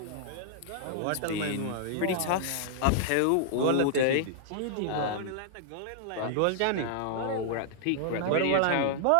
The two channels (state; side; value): different; both; correlation -0.01